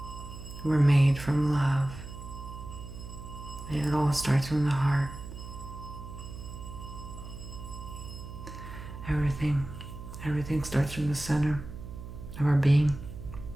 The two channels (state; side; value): noise; right; hum, 11 dB below the sound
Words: We're made from love. And it all starts from the heart. Everything starts from the center of our being.